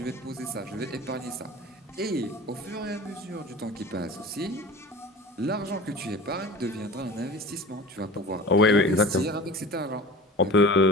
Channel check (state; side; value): normal; both; correlation 0.37